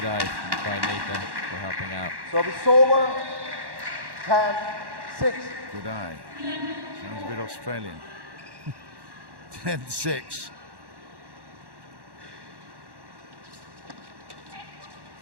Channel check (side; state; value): left; late; 1.1 ms